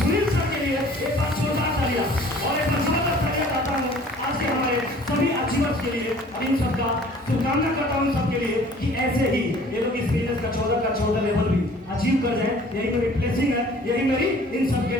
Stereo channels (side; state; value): both; normal; correlation 0.51